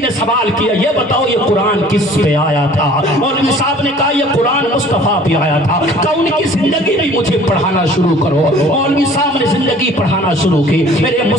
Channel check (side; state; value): both; normal; correlation 0.51